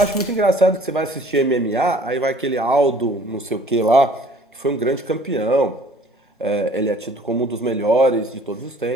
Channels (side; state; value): both; normal; correlation 0.53